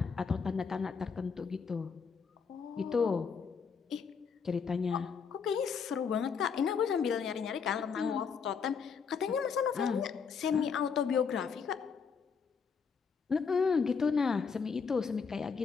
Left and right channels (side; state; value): right; quieter; 5.9 dB